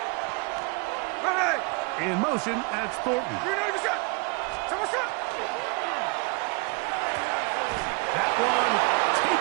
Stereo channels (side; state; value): left; quieter; 31.2 dB